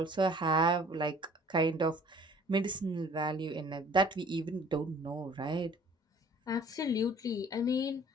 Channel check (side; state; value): both; normal; correlation 0.52